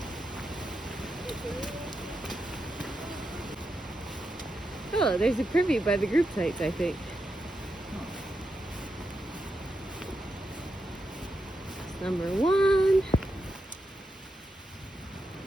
Oh, there's a privy by the group sites, I think. It's number 1.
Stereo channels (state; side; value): normal; both; correlation 0.86